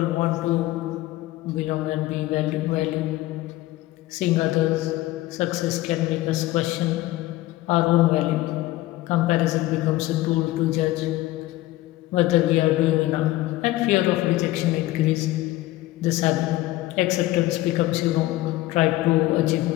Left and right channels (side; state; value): right; quieter; 16.9 dB